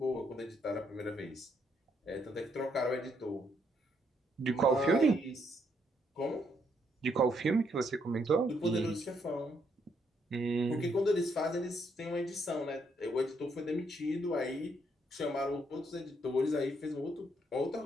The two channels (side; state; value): both; normal; correlation 0.73